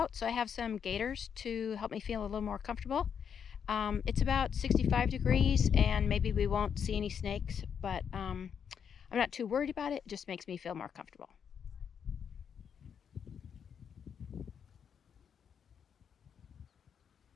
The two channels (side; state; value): right; quieter; 7.5 dB